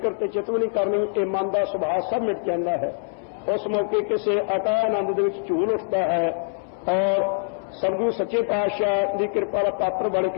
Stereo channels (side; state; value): right; silent; 63 dB below the other